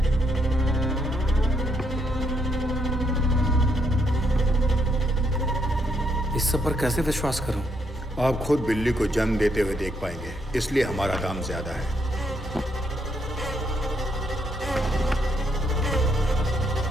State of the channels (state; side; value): normal; both; correlation 0.74